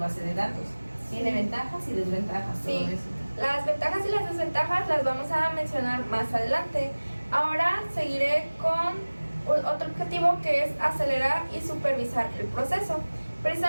de datos. Tiene ventajas y desventajas, todo Sí. eso. Las ventajas y las desventajas las vamos a mencionar más adelante. Ahora seguiré con otro objetivo, que es acelerar y supervisar el proceso.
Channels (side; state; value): both; inverted; correlation -1.00